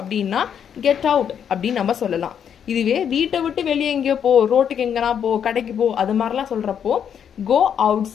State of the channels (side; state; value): right; quieter; 8.3 dB